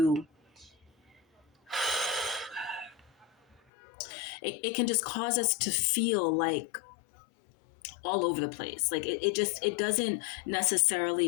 it can just cause us to feel like all over the place. Like it doesn't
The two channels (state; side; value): drops out; right; at 3.6 s